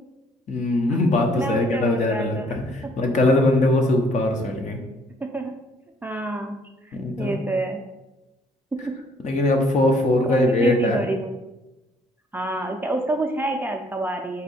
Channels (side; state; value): both; normal; correlation 0.63